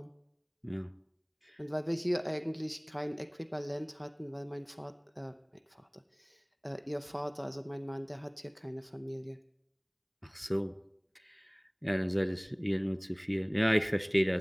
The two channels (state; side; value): identical; both; correlation 1.00